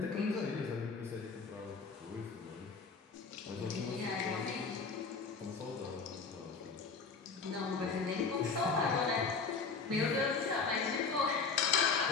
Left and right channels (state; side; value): quieter; right; 4.9 dB